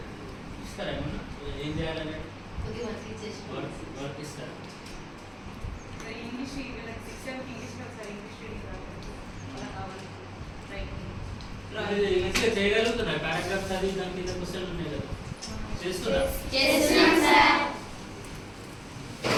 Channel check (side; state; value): both; identical; correlation 1.00